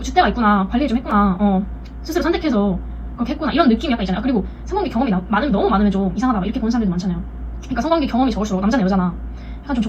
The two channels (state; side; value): identical; both; correlation 1.00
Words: 있구나, 관리 좀 했구나, 스스로 선택해서 그렇게 했구나 이런 느낌이 약간 있잖아요. 그리고 성관계 경험이 많으면 너무 많으면 좀 이상하다 이렇게 보는 사람들도 많잖아요. 그러니까 성관계 경험이 적을수록 남자나 여자나 약간 좀